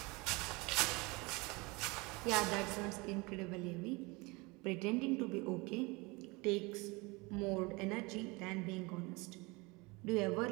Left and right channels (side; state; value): left; quieter; 25.6 dB